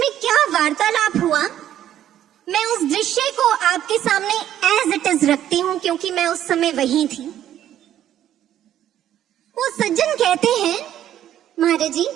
क्या वार्तालाप हुआ, मैं उस दृश्य को आपके सामने एज इट इज रखती हूँ क्योंकि मैं उस समय वहीं थी। वो सज्जन कहते हैं, महाराज जी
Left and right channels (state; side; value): quieter; left; 11.5 dB